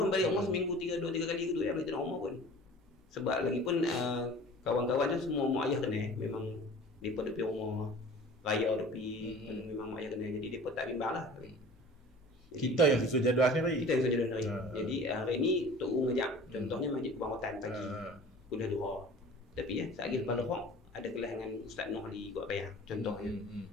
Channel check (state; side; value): normal; both; correlation 0.43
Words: balik rumah seminggu 2-3 kali gitu ya, balik rumah pun. Sebab lagi pun kawan-kawan tu semua mak ayah kena, memang depa duduk rumah raya depi, memang mak ayah kena, jadi depa tak bimbang lah. Kita yang susun jadual sendiri. Jadi hari ni Tok U ngajak, contohnya Masjid Kubang Rotan pagi kuliah duha. Tapi sekali lepas lohok ada kelas dengan Ustaz Noh di Kuat Payang contohnya.